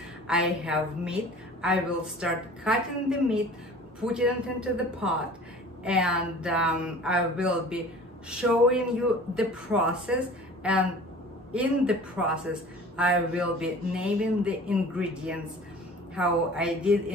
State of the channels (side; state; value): both; normal; correlation 0.44